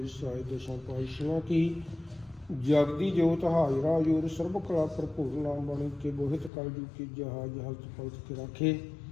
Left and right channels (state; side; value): drops out; right; at 6.5 s